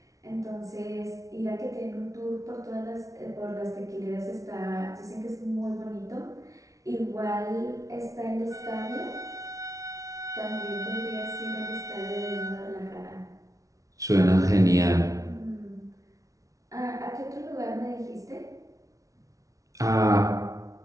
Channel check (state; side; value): late; left; 0.17 ms